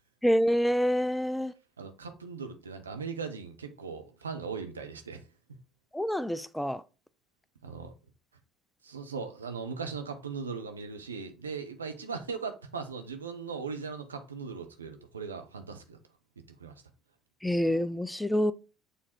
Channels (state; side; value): normal; both; correlation 0.73